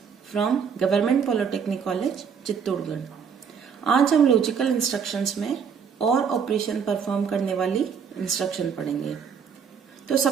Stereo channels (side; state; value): left; quieter; 6.8 dB